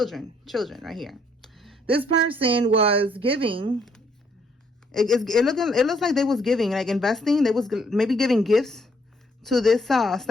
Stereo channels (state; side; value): normal; both; correlation 0.68